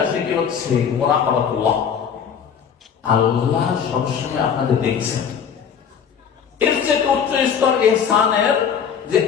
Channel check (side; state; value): right; quieter; 7.4 dB